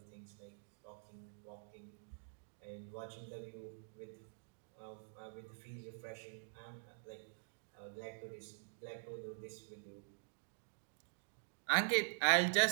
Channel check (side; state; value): left; silent; digital silence